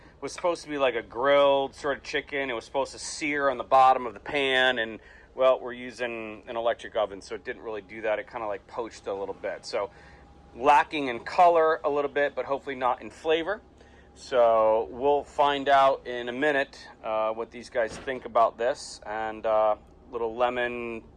was supposed to be like a grilled sort of chicken. It was supposed to sear on the bottom of the pan, and well, we're using an electric oven, so it didn't really do that. It kind of like poached a little bit. So lacking in color a little bit, but hopefully not in flavor. So we'll find out in a minute what these guys think about this. And little lemon,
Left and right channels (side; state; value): both; identical; correlation 1.00